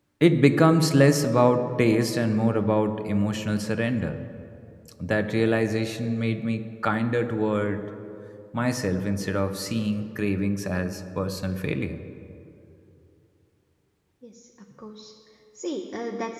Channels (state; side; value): identical; both; correlation 1.00